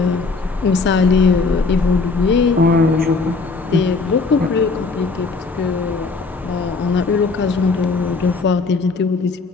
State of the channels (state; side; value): quieter; right; 4.1 dB